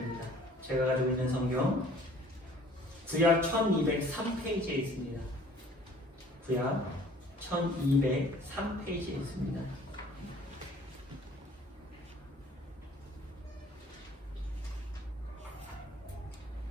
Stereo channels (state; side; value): normal; both; correlation 0.53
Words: 제가 가지고 있는 성경 구약 1203페이지에 있습니다. 구약 1203페이지에 있습니다.